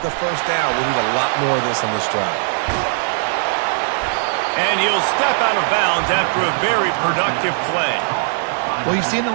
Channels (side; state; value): left; silent; digital silence